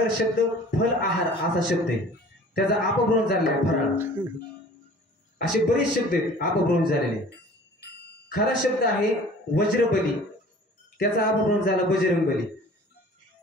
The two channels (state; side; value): normal; both; correlation 0.47